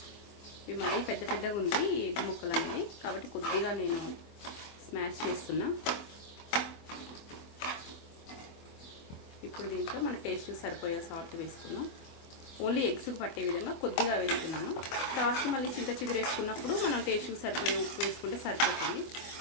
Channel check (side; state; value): right; late; 24 ms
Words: ఇవి మరీ పెద్ద పెద్దగా ఉంది ఈ ఎగ్ ముక్కలు అనేవి, కాబట్టి కొద్దిగా నేను స్మాష్ చేస్తున్నా. ఇప్పుడు దీంట్లో మన టేస్ట్కి సరిపోయే సాల్ట్ వేసుకున్నాం. ఓన్లీ ఎగ్స్కి పట్టే విధంగా కొద్దిగా వేస్తున్నాను. తర్వాత మళ్ళీ చింత చిగురు వేసుకున్నప్పుడు మనం టేస్ట్కి సరిపోయే ఉప్పు వేసుకుంటే సరిపోతుంది.